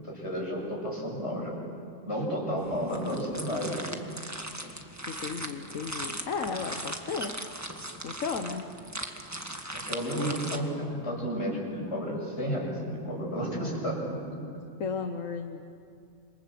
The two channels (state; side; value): normal; both; correlation 0.05